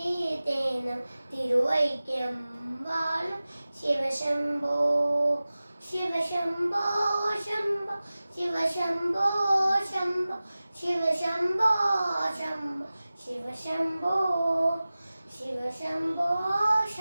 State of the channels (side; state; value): both; inverted; correlation -0.97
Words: തിരുവൈക്കം വാഴും ശിവശംഭോ ശിവശംഭോ ശംഭോ ശിവശംഭോ ശംഭോ ശിവശംഭോ ശംഭോ ശിവശംഭോ ശിവശംഭോ